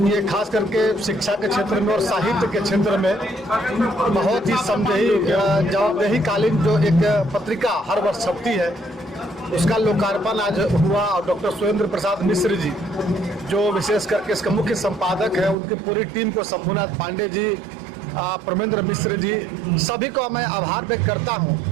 ये खास करके शिक्षा के क्षेत्र में और साहित्य के क्षेत्र में बहुत ही जवाबदेही कालीन जो एक पत्रिका हर वर्ष छपती है, उसका लोकार्पण आज हुआ। और डॉक्टर सुरेंद्र प्रसाद मिश्र जी जो विशेष करके इसका मुख्य संपादक है, उनकी पूरी टीम को, शंभुनाथ पांडे जी, परमेंद्र मिश्र जी, सभी को मैं आभार व्यक्त करता हूँ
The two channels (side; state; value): left; drops out; at 15.6 s